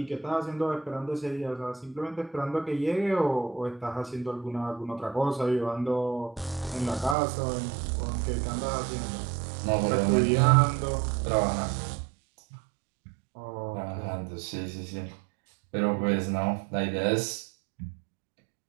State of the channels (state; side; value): drops out; left; at 7.2 s